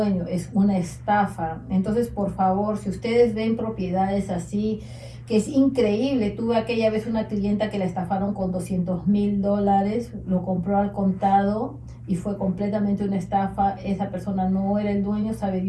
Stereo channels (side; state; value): both; identical; correlation 1.00